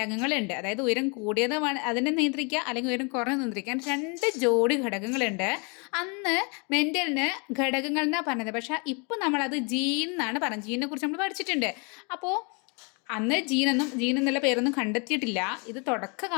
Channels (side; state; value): right; quieter; 33.4 dB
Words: അതായത് ഉയരം കൂടിയത് അതിനെ നിയന്ത്രിക്കുക, അല്ലെങ്കിൽ ഉയരം കുറഞ്ഞത് നിയന്ത്രിക്കാൻ 2 ജോഡി ഘടകങ്ങളുണ്ട്. അന്ന് മെൻ്റലിന് ഘടകങ്ങൾ എന്നാണ് പറഞ്ഞത്. പക്ഷേ ഇപ്പോൾ നമ്മളത് ജീൻ എന്നാണ് പറഞ്ഞത്. ജീനിനെ കുറിച്ച് നമ്മൾ പഠിച്ചിട്ടുണ്ട്. അപ്പോൾ അന്ന് ജീൻ എന്നുള്ള പേരൊന്നും കണ്ടെത്തിയിട്ടില്ല. ഇത്